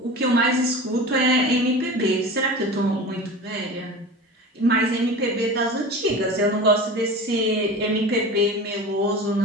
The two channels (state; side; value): normal; both; correlation 0.33